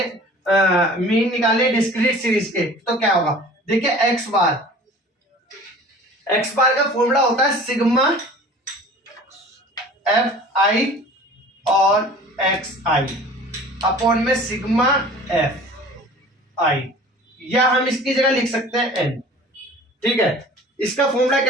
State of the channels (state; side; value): normal; both; correlation 0.44